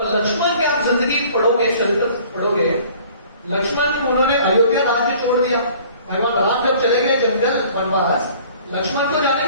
लक्ष्मण के आप जिंदगी पढ़ोगे, चरित्र पढ़ोगे, लक्ष्मण उन्होंने अयोध्या राज्य छोड़ दिया। भगवान राम जब चले गए जंगल वनवास, लक्ष्मण को जाने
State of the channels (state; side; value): inverted; both; correlation -0.51